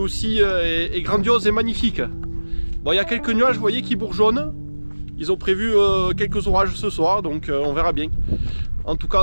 est grandiose et magnifique. Bon, il y a quelques nuages, vous voyez, qui bourgeonnent. Ils ont prévu quelques orages ce soir, donc on verra bien. En tout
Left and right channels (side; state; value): both; inverted; correlation -1.00